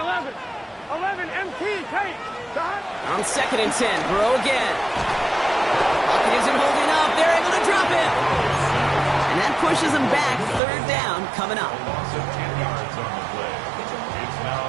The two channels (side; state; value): left; drops out; at 10.6 s